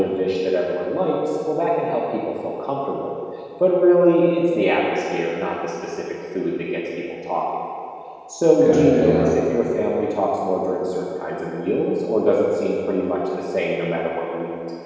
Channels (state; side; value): identical; both; correlation 1.00